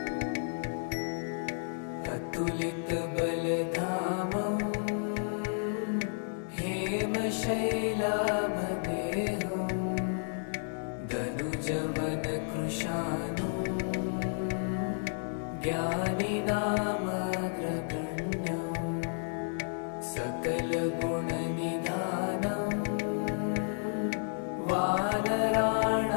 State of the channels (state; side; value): silent; right; 56 dB below the other